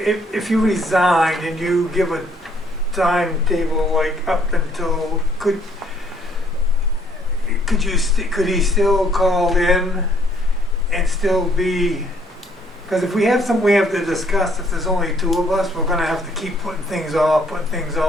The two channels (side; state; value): both; normal; correlation 0.65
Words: you resign and you give a timetable, like up until, could he still call in and still be, because if we have something we have to discuss, if there's only 2 of us, we're gonna have to keep putting things off,